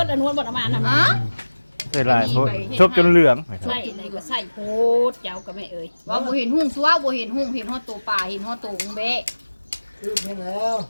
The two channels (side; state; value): both; inverted; correlation -1.00